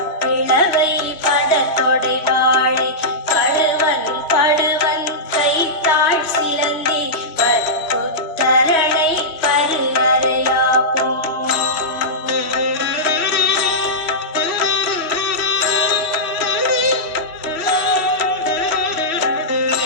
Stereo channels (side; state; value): right; late; 3.1 ms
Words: பிளவை படத்தொடை வாழை கழுவன் படுவன் கைத்தாழ் சிலந்தி பற்குத்தரணை பருவரையாகும்